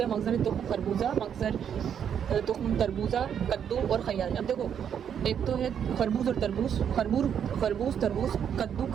हैं। मगज़र तुख्म खरबूजा, मगज़र तुख्म तरबूजा, कद्दू और खयार। अब देखो एक तो है खरबूज और तरबूज, खरबूज तरबूज, कद्दू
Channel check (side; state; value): left; quieter; 8.4 dB